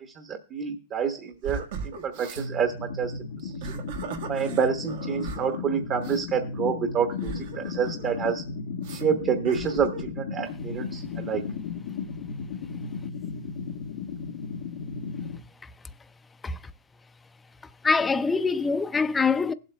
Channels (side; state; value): both; normal; correlation 0.34